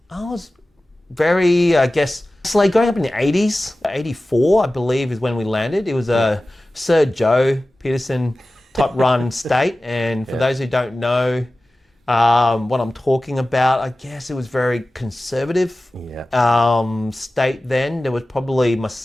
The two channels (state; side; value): normal; both; correlation 0.96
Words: very, I guess, it's like growing up in the 80s, 84, I believe, is when we landed. It was a Sir Joe Peterson type run state. And for those who don't know what I'm talking about, I guess it was very conservative state then. There was probably